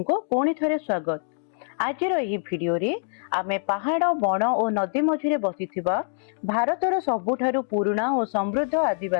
पुणी थरे स्वागत। आज यही वीडियो रे आमे पहाड़ बण और नदी मझिरे बसिथिबा भारतर सबुठारु पुराना और समृद्ध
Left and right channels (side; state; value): right; silent; 62 dB below the other